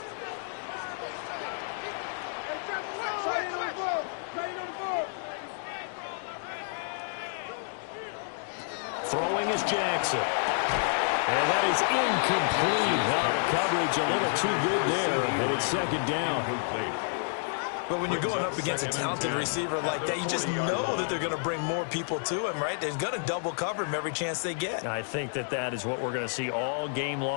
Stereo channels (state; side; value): silent; right; digital silence